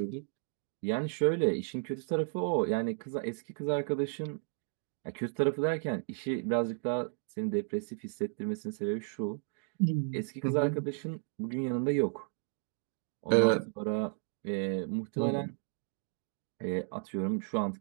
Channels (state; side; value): silent; left; 55 dB below the other